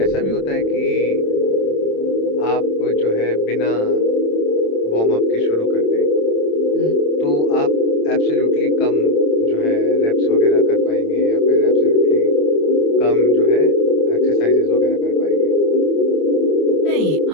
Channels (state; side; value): late; right; 27 ms